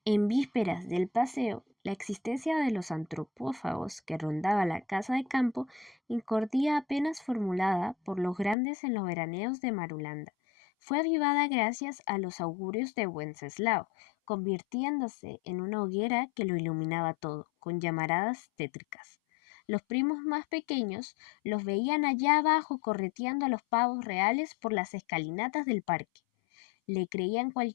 En vísperas del paseo, la existencia de los antropófagos que rondaba la casa de campo incordía apenas formulada por los grandes en los veraneos de Marulanda. Fue avivada gracias a los augurios de Wenceslao, convirtiéndose en una hoguera que lo iluminaba todo, con llamaradas tétricas. Los primos más pequeños los veían allá abajo correteando a los pavos reales por las escalinatas del parque. Le creían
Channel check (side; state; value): right; drops out; at 8.6 s